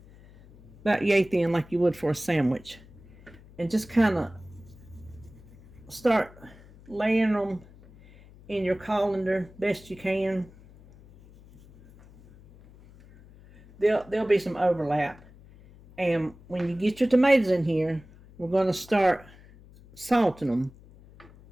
about yay thin like you would for a sandwich. And just kind of start laying them in your colander best you can. There'll be some overlap. And when you get your tomatoes in here, we're going to start salting them.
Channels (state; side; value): noise; left; hum, 23 dB below the sound